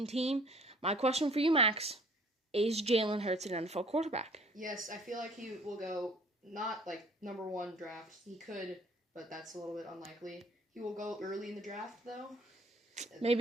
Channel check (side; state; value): both; normal; correlation 0.54